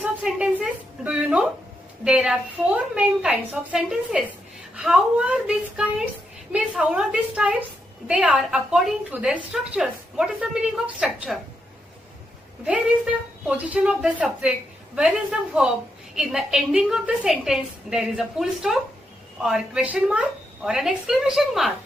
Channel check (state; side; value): normal; both; correlation 0.82